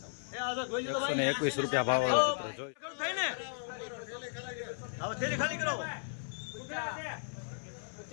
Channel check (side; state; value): right; silent; 54 dB below the other